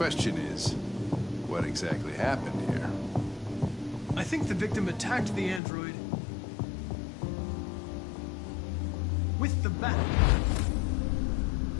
is, what exactly happened here? I think the victim attacked the android with the bat.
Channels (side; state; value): right; drops out; at 5.6 s